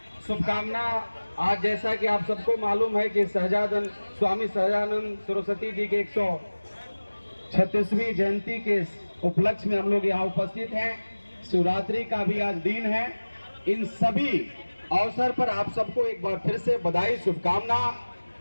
शुभकामना आज जैसा कि आप सबको मालूम है कि स्वामी सहजानंद सरस्वती जी के 136वीं जयंती के उपलक्ष्य में हम लोग यहाँ उपस्थित हैं। शिवरात्रि का भी आज दिन है। इन सभी अवसर पर आप सबको एक बार फिर से बधाई, शुभकामना।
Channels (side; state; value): both; inverted; correlation -1.00